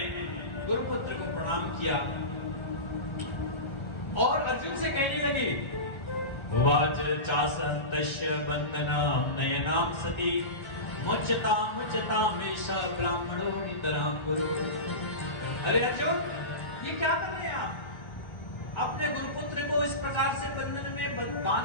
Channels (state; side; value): late; right; 1.4 ms